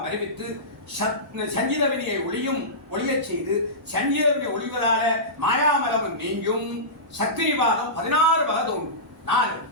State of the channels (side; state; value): both; normal; correlation -0.19